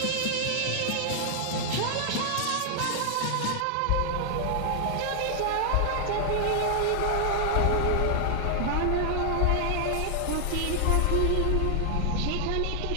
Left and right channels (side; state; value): both; different; correlation 0.00